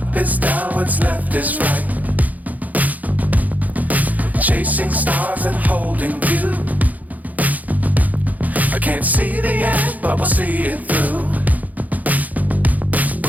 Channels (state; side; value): late; left; 0.079 ms